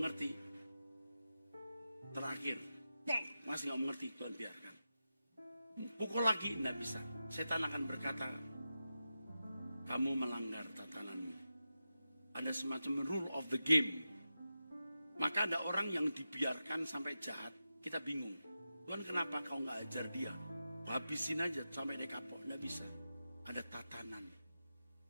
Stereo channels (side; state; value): both; inverted; correlation -0.91